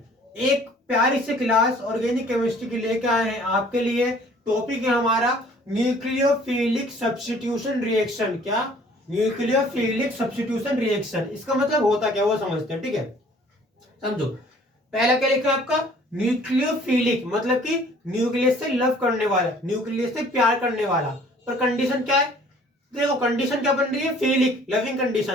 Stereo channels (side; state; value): both; normal; correlation 0.55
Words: एक प्यारी सी क्लास ऑर्गेनिक केमिस्ट्री की लेके आए हैं आपके लिए। टॉपिक है हमारा न्यूक्लियोफिलिक सब्स्टिट्यूशन रिएक्शन। क्या? न्यूक्लियोफिलिक सब्स्टिट्यूशन रिएक्शन, इसका मतलब होता क्या वो समझते हैं। ठीक है, समझो। पहला क्या लिखा है आपका? न्यूक्लियोफिलिक मतलब कि न्यूक्लियस से लव करने वाला, न्यूक्लियस से प्यार करने वाला। पर कंडीशन क्या है? देखो कंडीशन क्या बन रही है? फिलिक, लविंग कंडीशन